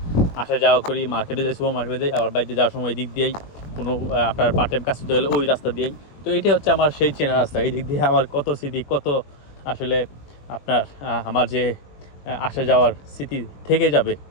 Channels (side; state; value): right; late; 21 ms